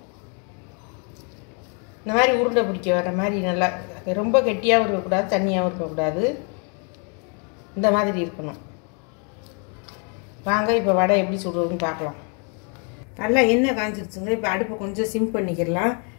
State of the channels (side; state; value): right; quieter; 37.9 dB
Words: இந்த மாதிரி உருண்டை பிடிக்க வர மாதிரி நல்லா, ரொம்ப கெட்டியாகவும் இருக்கக்கூடாது, தண்ணியாகவும் இருக்கக்கூடாது. இந்த மாதிரி இருக்கணும். வாங்க இப்போ வடை எப்படி சுடுறதுன்னு பார்க்கலாம். நல்லா எண்ணெய் காஞ்சிருச்சுங்க. இப்போ அடுப்பை கொஞ்சம் சிம் பண்ணிக்கிடலாம்.